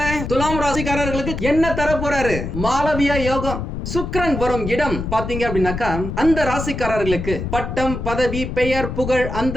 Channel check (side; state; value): left; noise; rumble, 5 dB below the sound